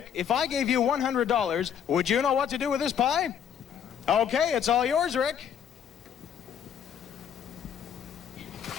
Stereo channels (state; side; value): quieter; right; 8.6 dB